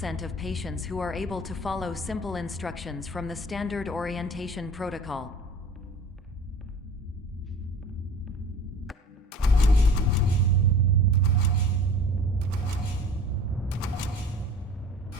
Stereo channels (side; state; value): both; normal; correlation 0.43